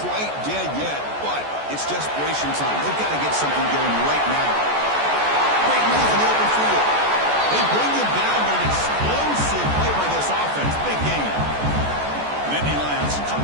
quite dead yet, but it's desperation time. They've got to get something going right now. Great move in the open field. They bring him down, but an explosive play by this offense. Big game. Nittany Lions come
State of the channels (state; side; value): late; left; 14 ms